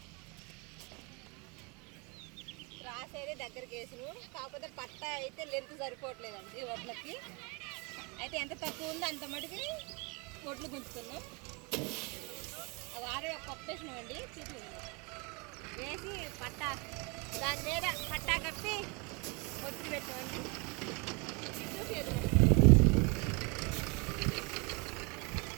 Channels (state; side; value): quieter; left; 30.6 dB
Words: రాసేది దగ్గరికి వేసిను, కాకపోతే పట్ట అయితే లెంత్ సరిపోవట్లేదండి వడ్లకి. అయితే ఎంత తక్కువ ఉందో అంత మటుకి వడ్లు గుంచుతున్నాం. వారే పప్పు వేసినామండి, వేసి పట్ట దాని మీద పట్టా కప్పి వడ్లు పెట్టామండి.